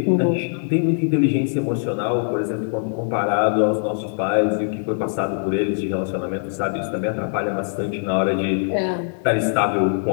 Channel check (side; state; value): right; silent; 64 dB below the other